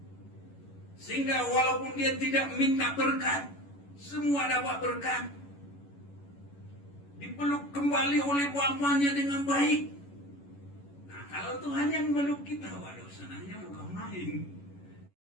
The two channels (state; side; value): late; right; 11 ms